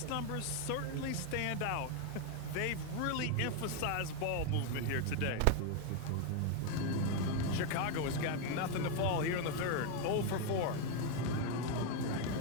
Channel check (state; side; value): different; both; correlation 0.01